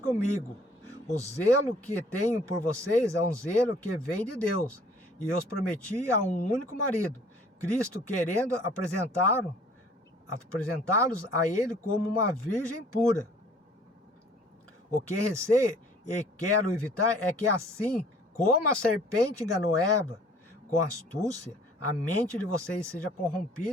O zelo que tenho por vocês é um zelo que vem de Deus. E eu os prometi a um único marido, Cristo, querendo apresentá-los a ele como uma virgem pura. O que receio e quero evitar é que assim como a serpente enganou Eva com astúcia, a mente de vocês seja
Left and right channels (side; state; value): both; normal; correlation 0.55